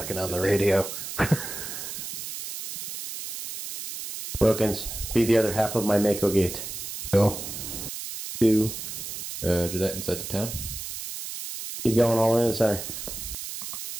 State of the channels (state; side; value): noise; right; hiss, 7 dB below the sound